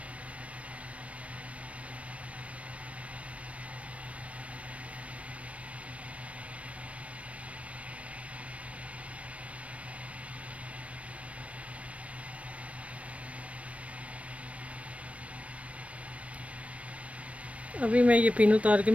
अभी मैं ये पिन उतार के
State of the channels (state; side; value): late; left; 0.064 ms